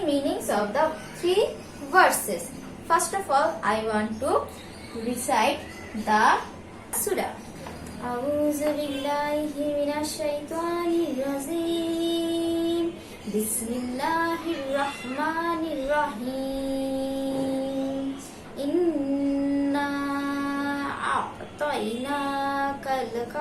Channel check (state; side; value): identical; both; correlation 1.00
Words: meanings of the three verses. First of all, I want to recite the surah. أعوذ بالله من الشيطان الرجيم بسم الله الرحمن الرحيم إنا أعطيناك